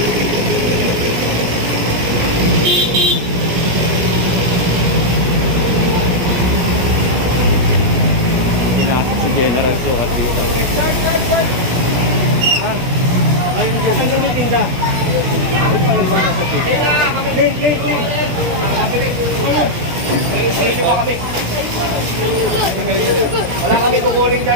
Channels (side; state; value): left; late; 17 ms